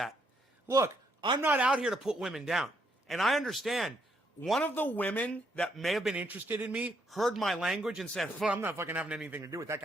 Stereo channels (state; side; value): normal; both; correlation 0.74